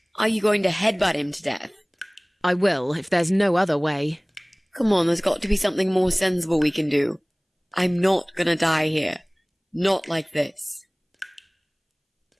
Are you going to headbutt him to death? I will, if there's no other way. Come on, there's got to be something more sensible we can do. I'm not gonna die here. Not like this.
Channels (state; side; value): identical; both; correlation 1.00